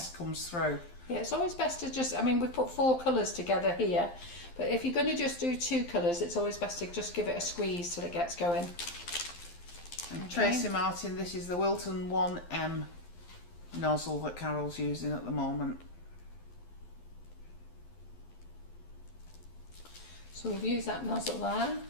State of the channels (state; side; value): late; right; 12 ms